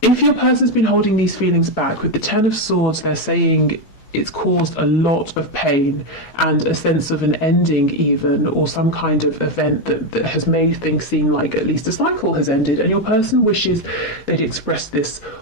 If your person's been holding these feelings back, with the Ten of Swords, they're saying it's caused a lot of pain and a sense of an ending even, or some kind of event that has made things seem like at least a cycle has ended, and your person wishes they'd express this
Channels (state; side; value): late; right; 14 ms